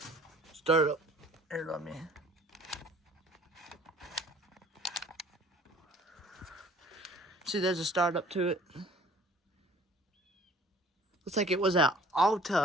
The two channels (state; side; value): normal; both; correlation 0.51